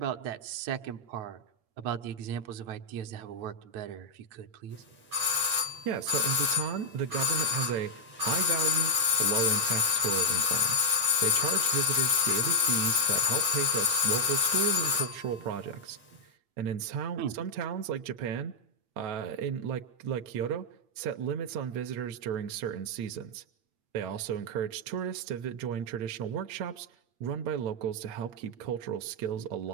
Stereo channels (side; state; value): left; late; 8.7 ms